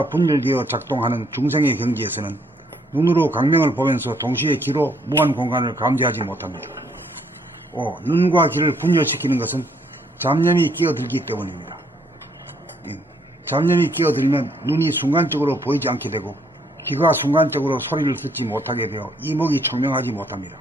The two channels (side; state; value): both; normal; correlation 0.68